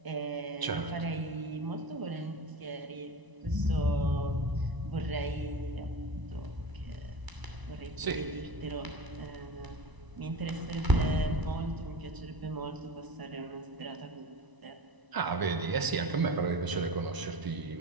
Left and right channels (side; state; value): left; late; 1.0 ms